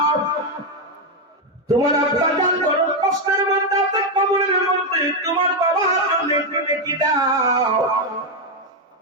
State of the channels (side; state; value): both; normal; correlation 0.04